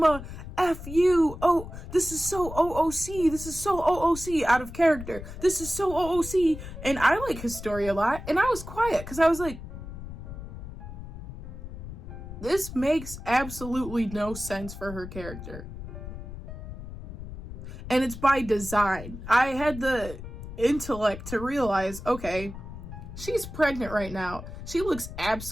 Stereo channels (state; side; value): noise; left; rumble, 11 dB below the sound